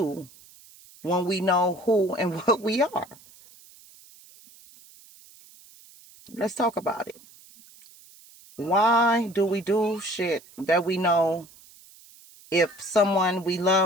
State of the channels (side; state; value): right; noise; hiss, 24 dB below the sound